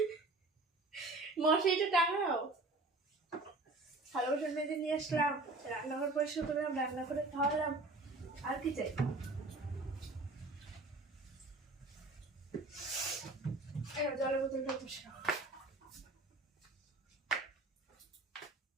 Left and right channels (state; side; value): quieter; left; 3.0 dB